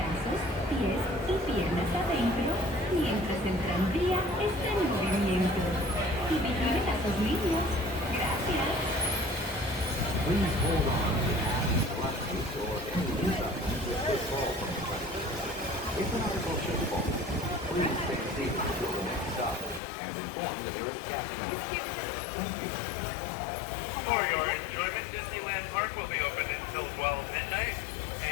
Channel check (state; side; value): drops out; right; at 19.8 s